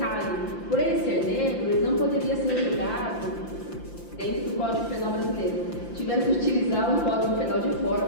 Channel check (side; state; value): right; late; 5.8 ms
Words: por ele ser negro, ele não poderia ser julgado dentro do Código Penal brasileiro. Tiveram que utilizar um Código Penal de fora,